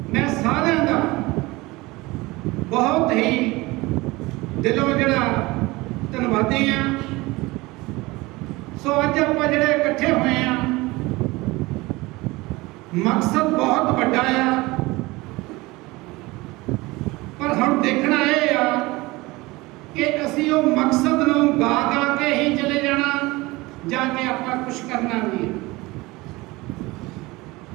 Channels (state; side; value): quieter; left; 21.7 dB